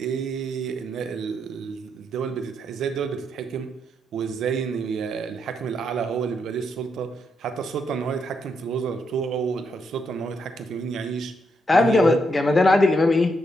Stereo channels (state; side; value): normal; both; correlation 0.79